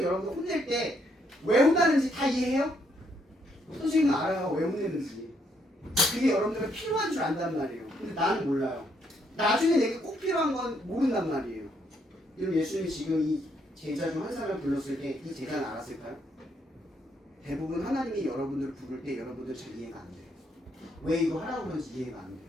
여러분들 혼낼 때 왜 혼나는지 다 이해해요? 선생님은 알아요. 왜 혼내는지. 그게 여러분들은 필요한 줄 안단 말이에요. 근데 나는 몰라요. 나중에 내게 꼭 필요한 건 모른단 말이에요. 그럼 예수님이 지금 이 제자 중 한 사람을 불렀을 때 이 제자는 알았을까요? 대부분 하나님이 여러분들을 부를 때 여러분들 잘 이해가 안 돼요. 왜 이거 하라고 그러는지 이해가 안 돼요.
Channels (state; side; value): normal; both; correlation 0.73